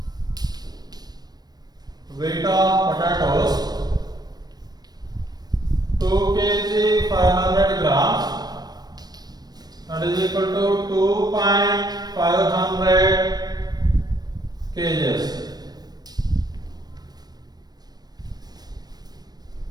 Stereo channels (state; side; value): late; left; 0.19 ms